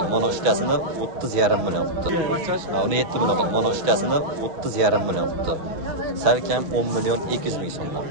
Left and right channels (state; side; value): late; left; 5.8 ms